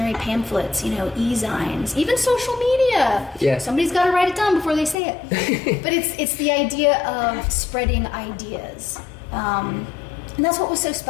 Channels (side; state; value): right; drops out; at 5.0 s